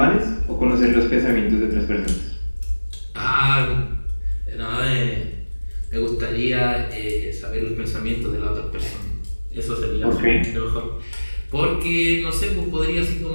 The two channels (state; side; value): inverted; both; correlation -1.00